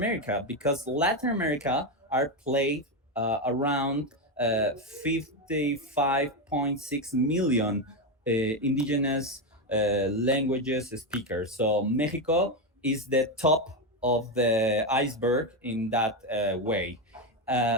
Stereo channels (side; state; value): both; normal; correlation 0.09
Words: because Latin America are played around 55.6 million indigenous languages speakers. So Mexico is the top of the iceberg in that way.